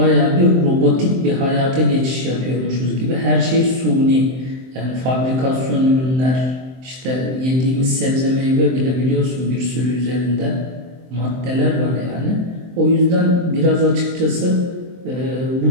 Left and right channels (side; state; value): left; late; 23 ms